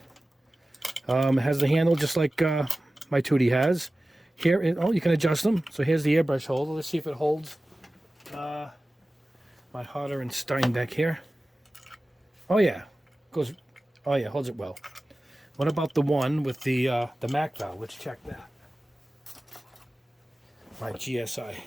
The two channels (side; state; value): both; normal; correlation 0.96